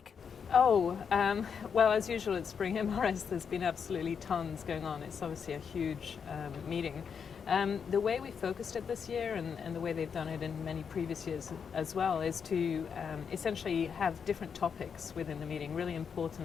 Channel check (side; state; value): right; quieter; 6.7 dB